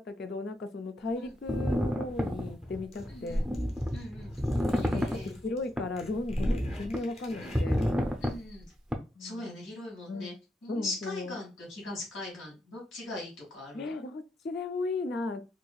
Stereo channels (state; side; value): normal; both; correlation 0.82